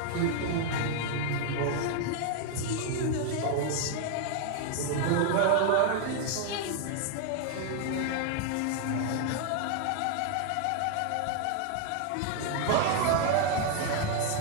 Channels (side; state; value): both; different; correlation 0.00